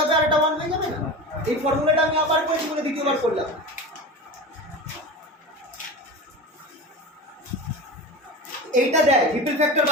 হবে আর এটা 1 হয়ে যাবে না? এই ফর্মুলাটা আমি আবার করেছি বলে দ্বিতীয়বার করলাম। এইটা দেয় রিপেল ফ্যাক্টর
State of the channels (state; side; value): normal; both; correlation 0.29